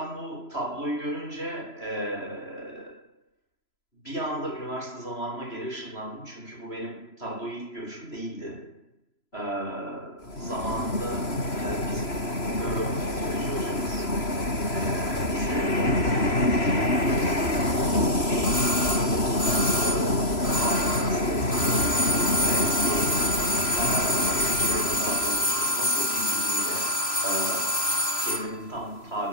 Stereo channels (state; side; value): late; right; 3.0 ms